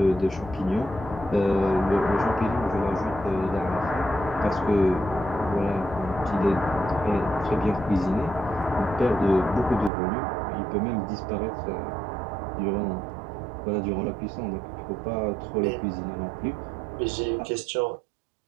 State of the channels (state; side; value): drops out; left; at 9.9 s